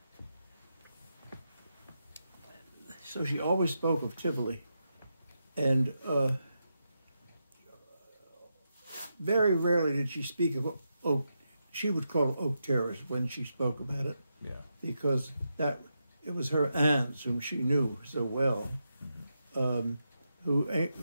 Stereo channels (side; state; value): both; inverted; correlation -0.85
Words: so she always spoke of Tivoli, and very rarely did she speak of Oak. She would call it Oak Terrace when she spoke about it, because it was her aunts whom she knew so well, who